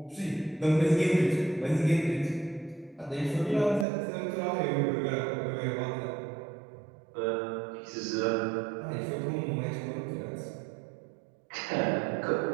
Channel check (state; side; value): drops out; left; at 3.9 s